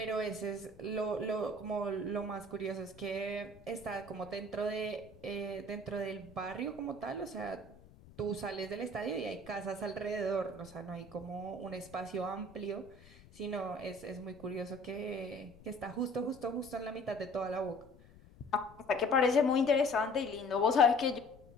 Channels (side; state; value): left; noise; rumble, 22 dB below the sound